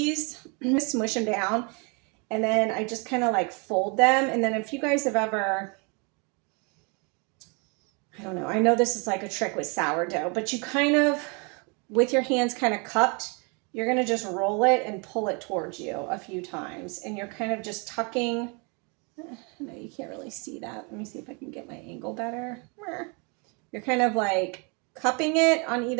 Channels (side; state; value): left; quieter; 33.0 dB